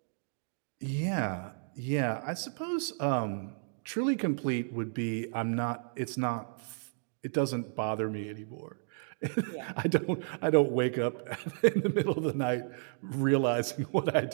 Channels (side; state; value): left; silent; digital silence